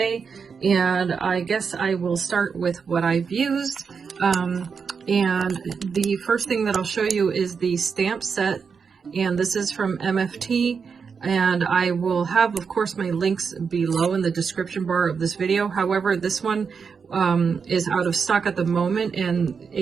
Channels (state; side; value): quieter; left; 5.8 dB